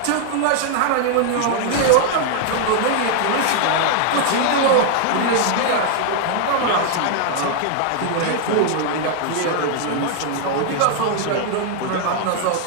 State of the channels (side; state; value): both; different; correlation 0.00